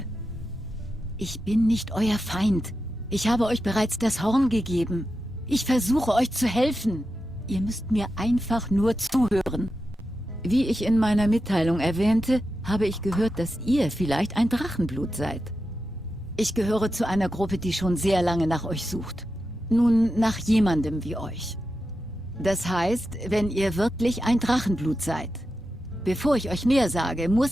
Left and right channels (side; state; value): both; normal; correlation 0.90